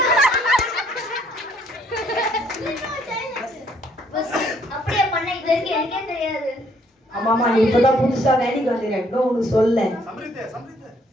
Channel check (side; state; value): both; normal; correlation 0.66